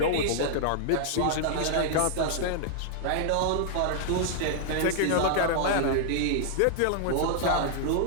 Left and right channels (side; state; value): both; different; correlation -0.01